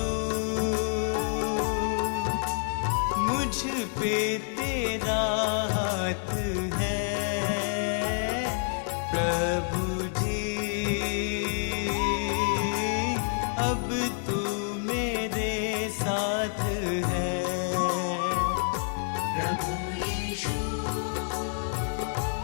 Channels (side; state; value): right; silent; digital silence